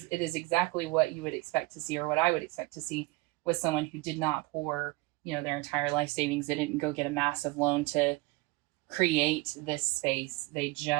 is exactly what you would expect to see, or what I would expect to see with someone who did not pour, their entire life savings. They didn't go get a massive loan to create this space. They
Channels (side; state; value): left; quieter; 21.5 dB